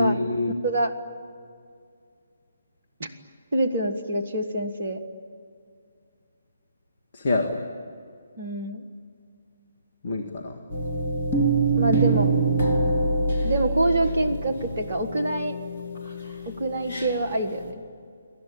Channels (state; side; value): inverted; both; correlation -0.69